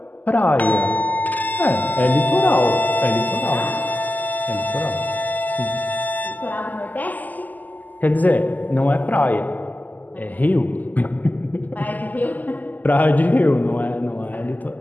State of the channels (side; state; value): right; late; 0.082 ms